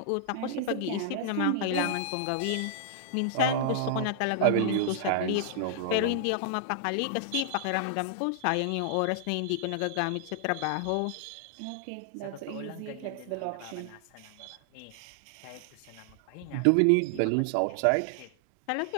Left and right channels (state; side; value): different; both; correlation -0.01